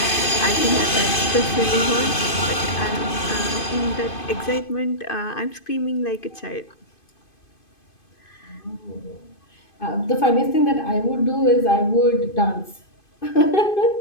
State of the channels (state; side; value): late; right; 2.5 ms